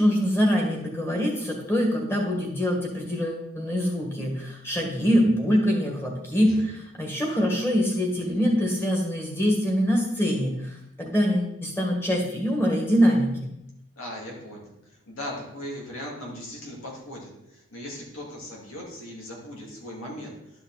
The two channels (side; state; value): both; normal; correlation 0.85